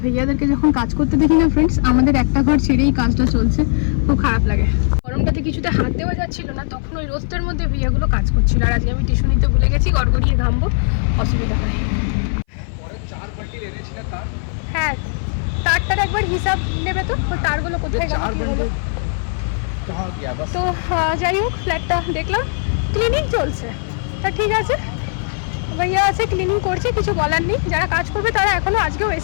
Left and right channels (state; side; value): silent; right; 59 dB below the other